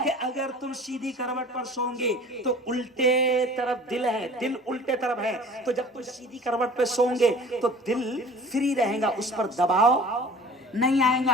कि अगर तुम सीधी करवट पर सोओगे तो उल्टे तरफ दिल है, दिल उल्टे तरफ है, तो जब तुम सीधी करवट पर सोओगे तो दिल फ्री रहेगा, उस पर दबाव नहीं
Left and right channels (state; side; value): normal; both; correlation 0.45